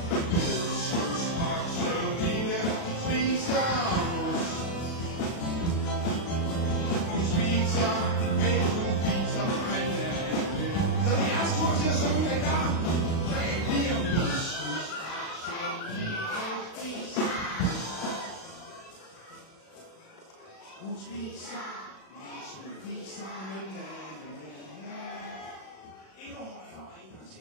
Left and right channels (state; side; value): late; right; 36 ms